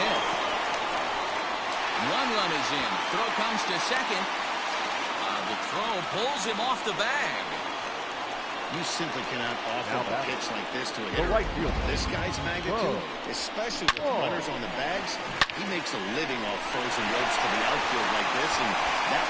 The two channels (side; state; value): both; identical; correlation 1.00